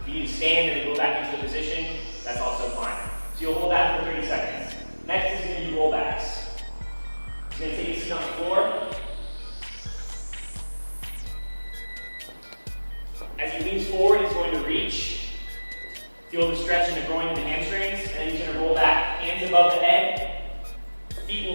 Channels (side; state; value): both; inverted; correlation -1.00